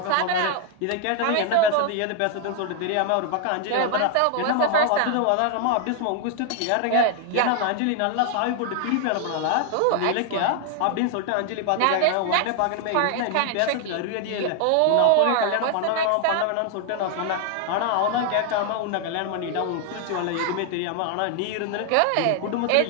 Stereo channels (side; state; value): both; different; correlation 0.00